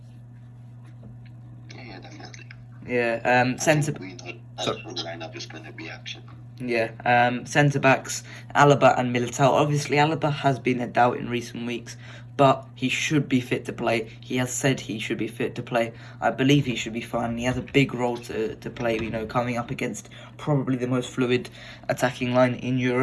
Yeah, definitely. Yeah, centre. We know that the lineup is going to be action. Yeah, centre backs, Alaba and Militao. Obviously, Alaba has been a doubt in recent weeks, but he should be fit to play. He has said he should be fit to play. I believe he should be fine. He has a big role to play, coming up against probably the most fluid attacking line in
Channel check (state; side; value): identical; both; correlation 1.00